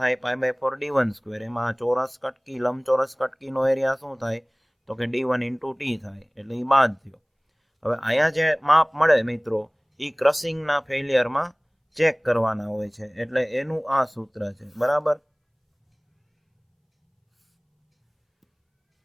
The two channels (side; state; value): both; identical; correlation 1.00